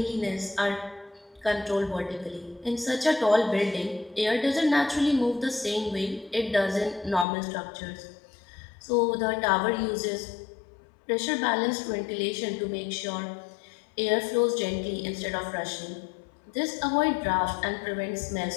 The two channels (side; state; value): right; drops out; at 7.2 s